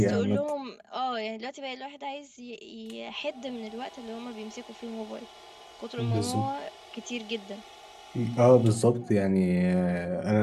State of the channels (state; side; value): identical; both; correlation 1.00